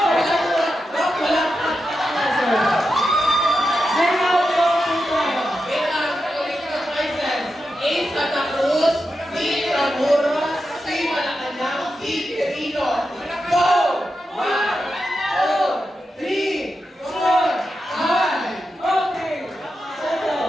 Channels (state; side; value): normal; both; correlation 0.89